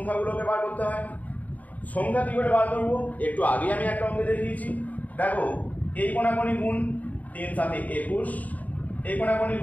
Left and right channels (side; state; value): right; late; 0.074 ms